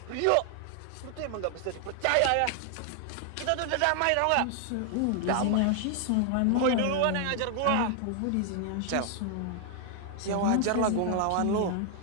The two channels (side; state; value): both; different; correlation 0.00